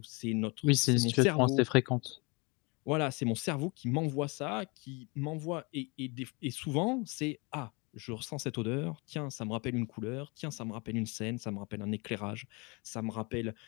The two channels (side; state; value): right; quieter; 29.4 dB